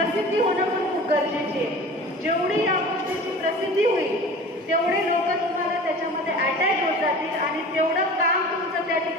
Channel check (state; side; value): normal; both; correlation 0.39